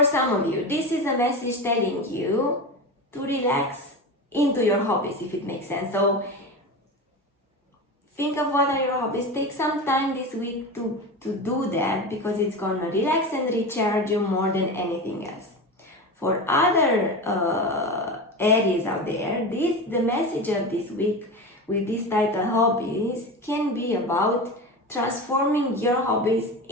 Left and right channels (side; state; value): both; normal; correlation 0.25